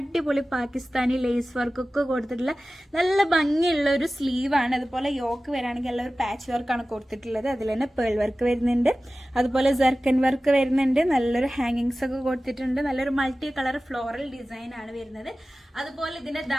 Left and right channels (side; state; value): both; normal; correlation 0.96